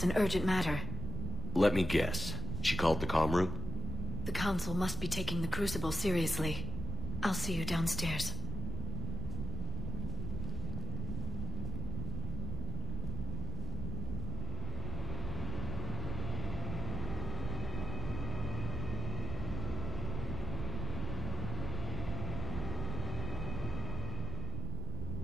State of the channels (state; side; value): noise; right; rumble, 2 dB below the sound